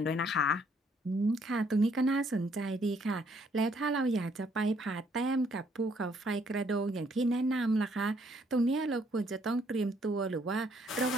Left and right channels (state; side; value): normal; both; correlation 0.68